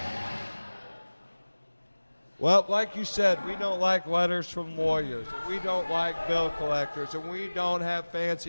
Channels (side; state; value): both; inverted; correlation -1.00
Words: Well, like you said, we don't like letters from lawyers, and we don't like bill collectors, and we don't have